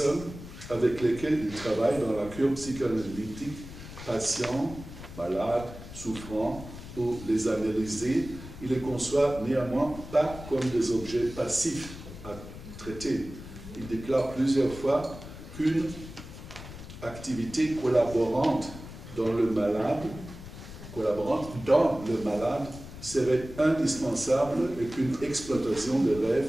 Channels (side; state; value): left; noise; rumble, 13 dB below the sound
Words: avec lesquelles il travaille dans la cure psychanalytique, patients, malades, souffrants, ou les analyser, il les conçoit néanmoins pas comme des objets passifs à traiter. Il déclare plusieurs fois qu'une activité collaborante dans le malade serait indispensable et qu'une exploitation de